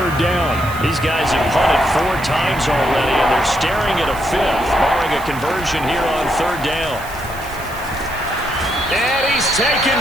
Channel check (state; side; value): noise; right; hiss, 17 dB below the sound